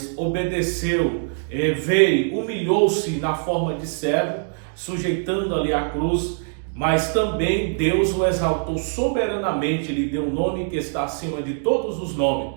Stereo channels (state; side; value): silent; left; digital silence